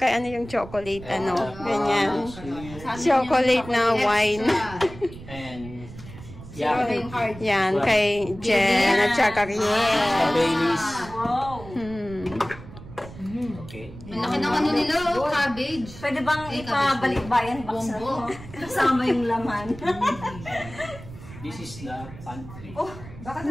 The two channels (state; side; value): noise; right; rumble, 15 dB below the sound